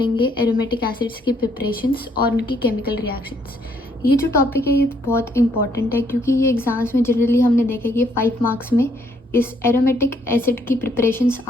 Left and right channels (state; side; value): normal; both; correlation 0.69